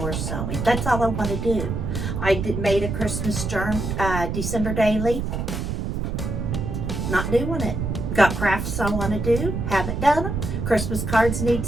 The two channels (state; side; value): noise; right; rumble, 3 dB below the sound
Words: sewing. That's all I want to do. I made a Christmas December daily. Not doing it. Got crafts I want to do. Haven't done them. Christmas cards need